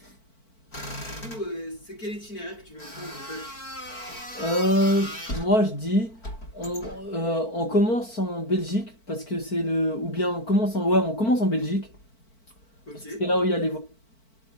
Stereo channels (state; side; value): late; right; 4.5 ms